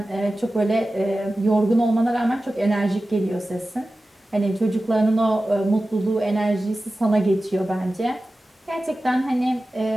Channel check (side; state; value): both; normal; correlation 0.95